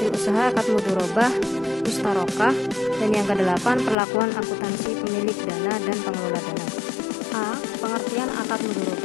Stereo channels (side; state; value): right; drops out; at 4.0 s